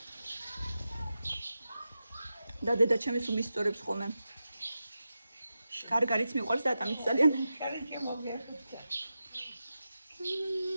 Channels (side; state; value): both; inverted; correlation -0.91